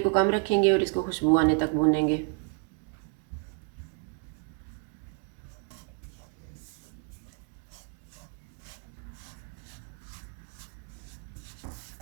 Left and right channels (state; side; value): quieter; left; 35.9 dB